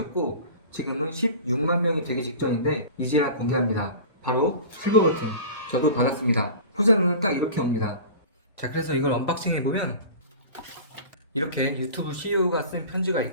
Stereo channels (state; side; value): inverted; both; correlation -0.37